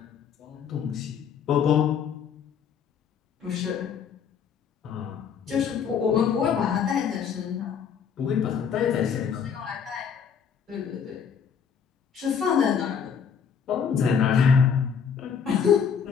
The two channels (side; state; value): right; quieter; 7.1 dB